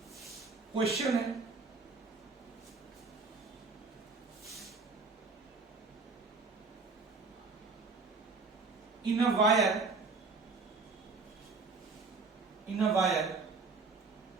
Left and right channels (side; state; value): left; quieter; 4.2 dB